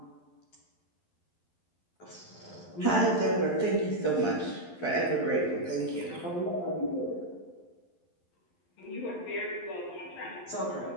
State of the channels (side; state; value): right; late; 11 ms